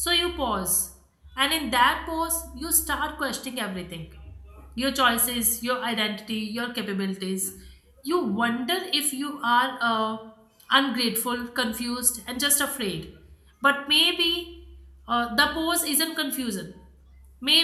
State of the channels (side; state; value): both; identical; correlation 1.00